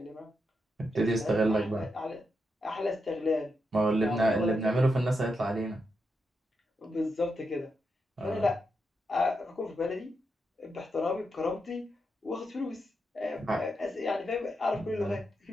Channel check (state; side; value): normal; both; correlation 0.84